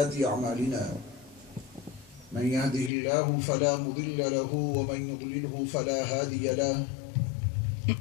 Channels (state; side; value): drops out; right; at 2.9 s